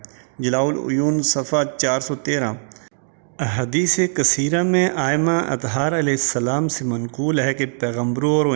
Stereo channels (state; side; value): silent; left; digital silence